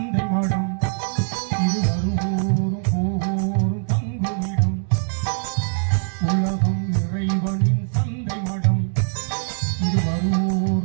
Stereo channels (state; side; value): silent; left; 64 dB below the other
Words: மடம், இது வருவோரும் போவோரும் தங்குமிடம். உலகம் இறைவனின் சந்தை மடம், இது